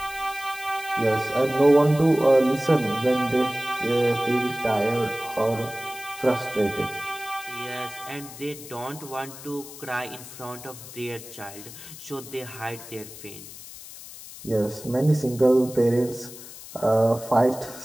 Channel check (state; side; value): noise; left; hiss, 15 dB below the sound